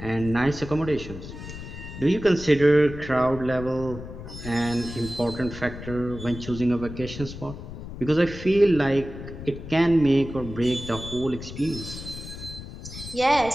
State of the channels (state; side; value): noise; left; rumble, 11 dB below the sound